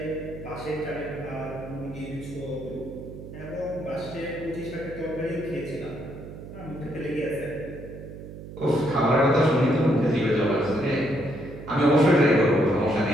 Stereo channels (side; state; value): right; noise; hum, 13 dB below the sound